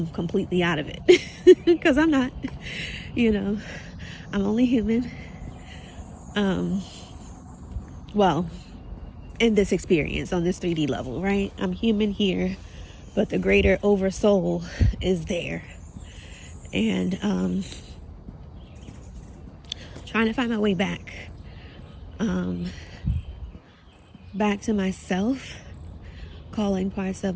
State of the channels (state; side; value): identical; both; correlation 1.00